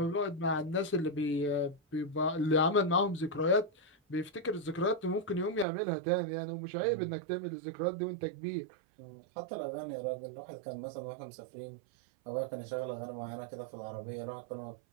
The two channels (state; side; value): drops out; left; at 5.7 s